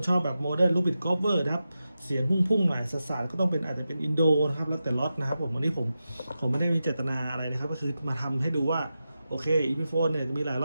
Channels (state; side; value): inverted; both; correlation -0.91